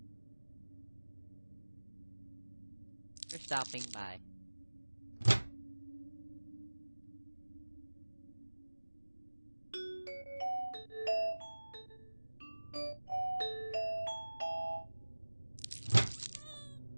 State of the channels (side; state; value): both; inverted; correlation -1.00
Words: For stopping by.